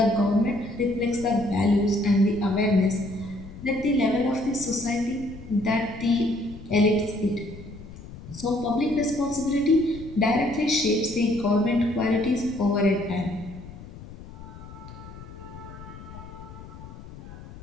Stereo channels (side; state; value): left; noise; rumble, 15 dB below the sound